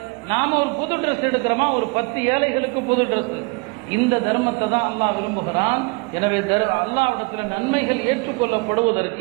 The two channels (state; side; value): quieter; left; 30.0 dB